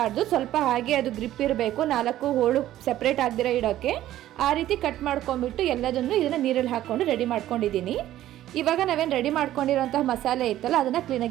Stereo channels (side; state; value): left; quieter; 13.4 dB